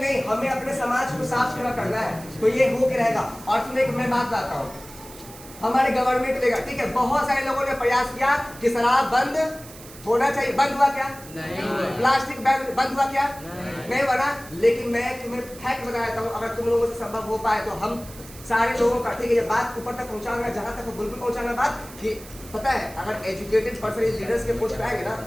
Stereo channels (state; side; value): noise; right; hiss, 18 dB below the sound